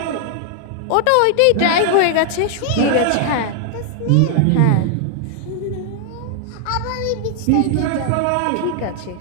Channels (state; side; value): different; both; correlation 0.00